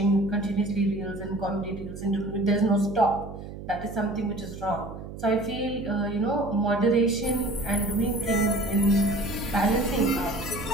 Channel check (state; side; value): noise; right; hum, 11 dB below the sound